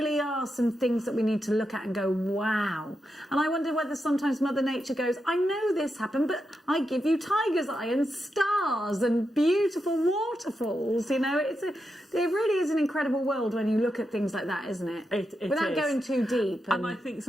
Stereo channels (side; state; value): both; normal; correlation 0.86